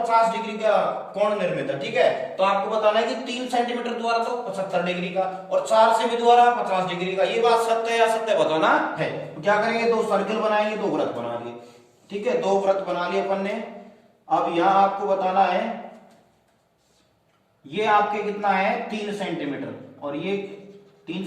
डिग्री का कोण निर्मित है। ठीक है, तो आपको बताना है कि 3 सेंटीमीटर द्वारा तो 75 डिग्री का और 4 सेमी द्वारा 50 डिग्री का। ये बात सत्य है या असत्य बताना है। तो क्या करेंगे, 2 सर्कल बनाएंगे, 2 वृत्त बना लिए। ठीक है, 2 वृत्त बना लिए अपन ने। अब यहां आपको बताना है, ये आपके कितना है 3 सेंटीमीटर और ये 3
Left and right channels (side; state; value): both; identical; correlation 1.00